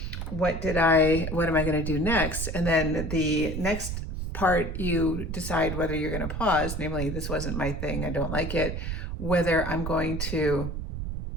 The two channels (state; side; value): noise; right; rumble, 4 dB below the sound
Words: what am I going to do next? And then the next part, you decide whether you're going to pause, namely, this wasn't my thing, I don't like it, whether I'm going to